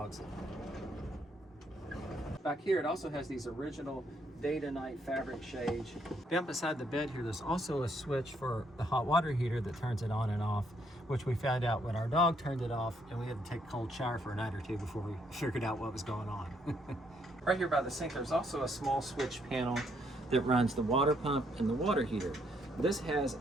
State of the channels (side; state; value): both; normal; correlation 0.72